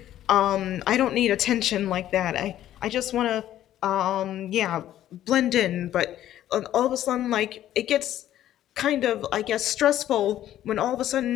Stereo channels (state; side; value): quieter; right; 12.4 dB